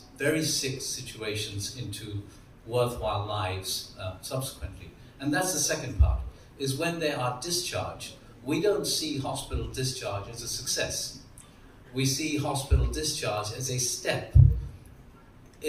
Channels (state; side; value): identical; both; correlation 1.00